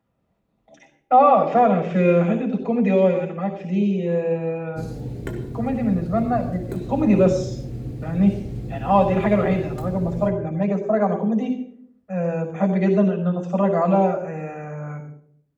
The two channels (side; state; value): both; identical; correlation 1.00